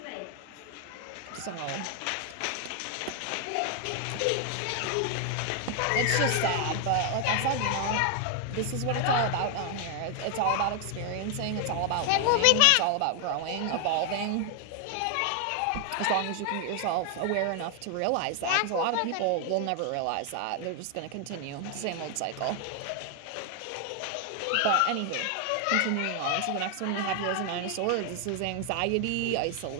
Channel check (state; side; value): different; both; correlation 0.00